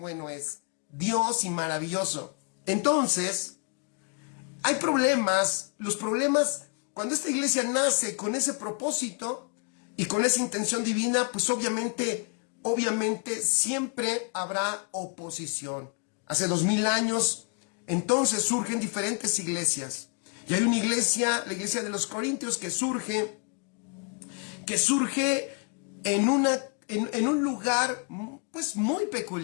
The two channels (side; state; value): right; quieter; 36.5 dB